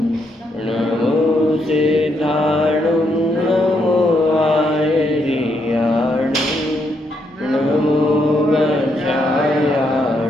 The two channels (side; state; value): both; normal; correlation 0.77